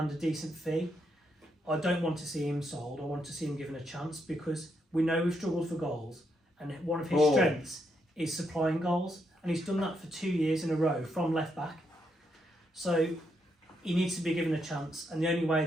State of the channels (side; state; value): both; normal; correlation 0.79